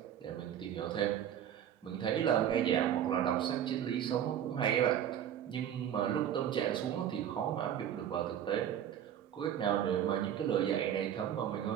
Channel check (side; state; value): left; quieter; 10.0 dB